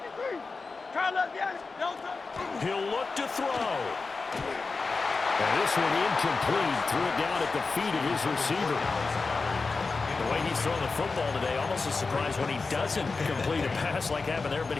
He'll look to throw. And this one incomplete. Threw it down at the feet of his receiver. The way he's throwing the football today, almost a surprise when he doesn't complete a pass like happened there, but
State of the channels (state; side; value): quieter; right; 4.1 dB